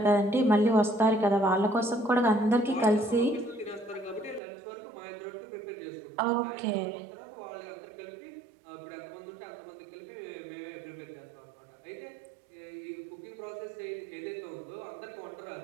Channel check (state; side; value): drops out; left; at 4.4 s